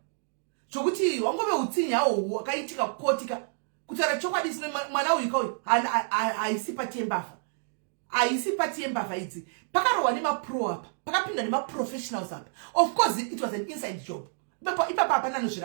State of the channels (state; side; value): silent; left; digital silence